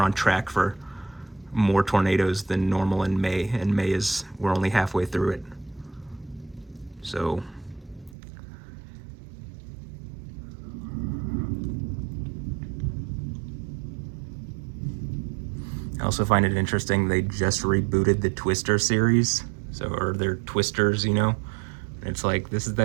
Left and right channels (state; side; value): drops out; left; at 8.2 s